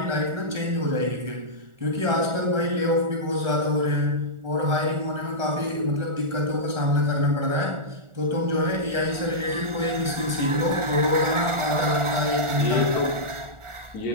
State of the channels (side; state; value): left; late; 1.4 ms